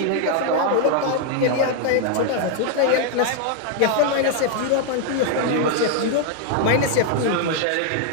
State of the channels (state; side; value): different; both; correlation 0.00